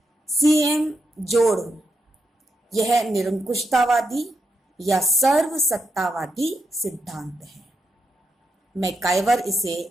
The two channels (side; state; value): both; normal; correlation 0.83